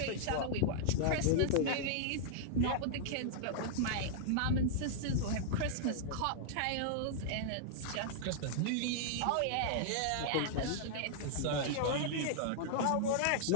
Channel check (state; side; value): different; both; correlation -0.01